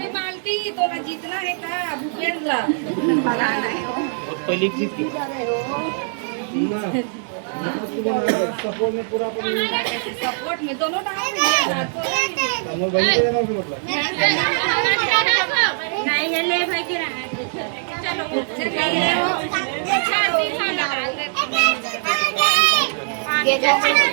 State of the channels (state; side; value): silent; left; digital silence